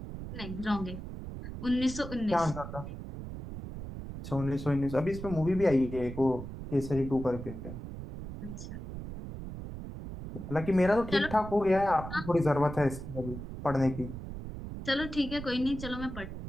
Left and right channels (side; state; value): right; noise; rumble, 9 dB below the sound